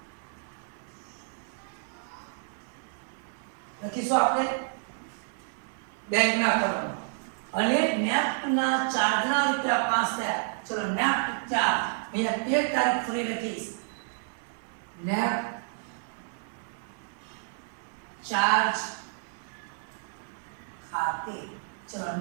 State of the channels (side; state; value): left; silent; digital silence